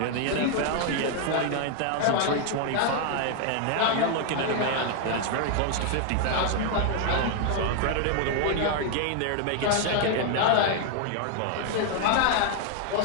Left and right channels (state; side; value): different; both; correlation 0.00